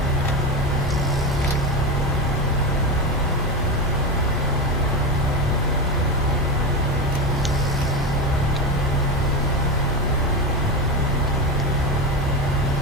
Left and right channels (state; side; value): normal; both; correlation 0.17